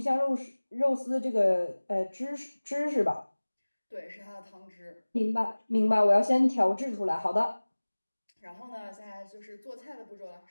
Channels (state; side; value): inverted; both; correlation -1.00